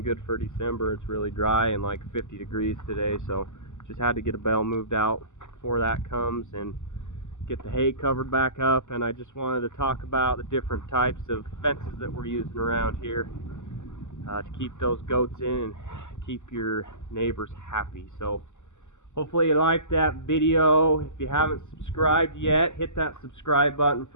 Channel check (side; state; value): right; late; 0.84 ms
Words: good for December. It's really dry and like 50 degrees today, so just had to get a bale moved out before that comes and get the hay covered back up. And I just wanted to talk about the different types of fences that we're using around here to keep those goats in and keep your neighbors happy. So hopefully you liked that video. If you haven't subscribed yet, hit that subscribe button